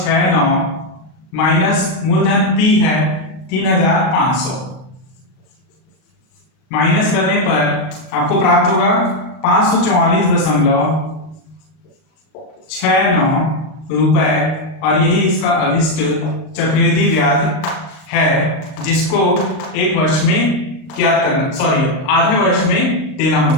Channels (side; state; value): right; late; 39 ms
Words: माइनस मूलधन पी है 3500। माइनस करने पर आपको प्राप्त होगा 544.69 रुपए, और यही इसका अभिष्ट चक्रवृद्धि ब्याज है, जिसको एक वर्ष में ज्ञात करना, आधे वर्ष में देना